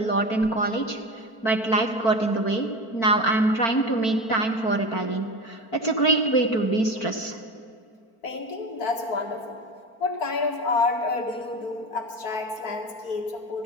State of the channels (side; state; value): right; late; 4.5 ms